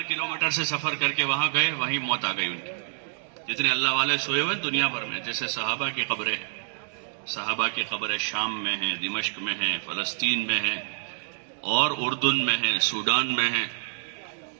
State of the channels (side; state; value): left; silent; digital silence